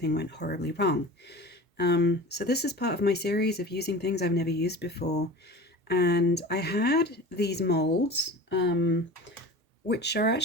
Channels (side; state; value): both; normal; correlation 0.35